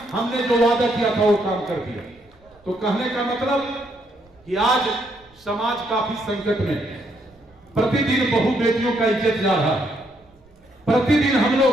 हमने जो वादा किया था वो काम कर दिया। तो कहने का मतलब कि आज समाज काफी संकट में है। प्रतिदिन बहु बेटियों का इज्जत जा रहा है। प्रतिदिन हम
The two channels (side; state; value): right; noise; rumble, 30 dB below the sound